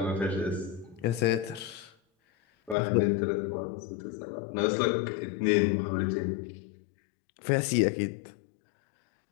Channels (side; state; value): right; drops out; at 2.8 s